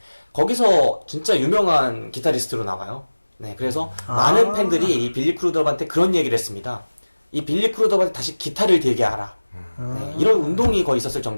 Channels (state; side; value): inverted; both; correlation -1.00